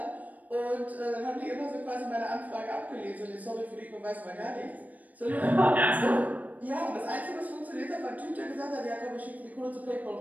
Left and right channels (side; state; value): left; late; 0.076 ms